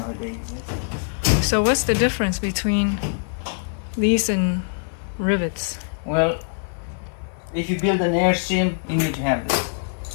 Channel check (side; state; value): right; silent; 56 dB below the other